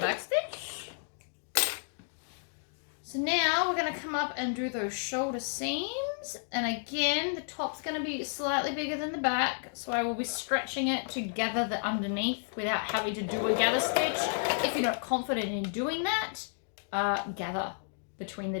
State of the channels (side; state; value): right; silent; digital silence